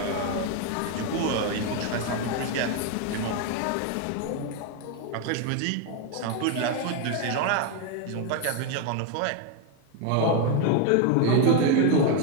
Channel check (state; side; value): different; both; correlation 0.01